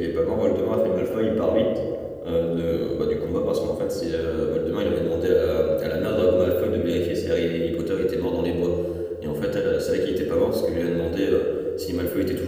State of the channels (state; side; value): identical; both; correlation 1.00